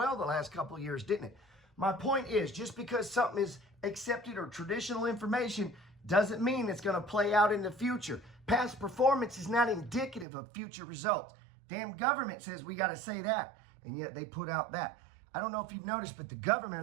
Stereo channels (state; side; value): drops out; left; at 10.2 s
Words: the last couple of years, didn't it? My point is, just because something is accepted or traditional information doesn't mean it's going to play out in the future. Past performance is not indicative of future results. Damn government says we got to say that, and yet they put out that. I don't know if you've noticed, but the government